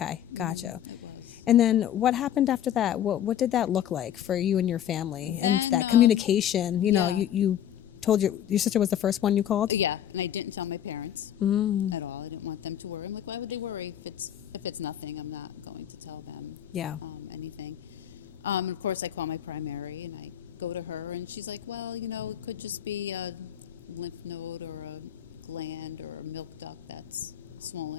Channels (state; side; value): quieter; right; 10.6 dB